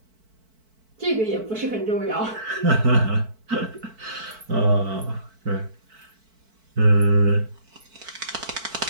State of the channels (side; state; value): left; late; 4.5 ms